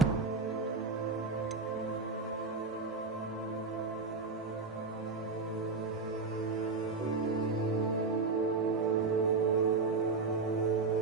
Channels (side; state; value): left; quieter; 4.2 dB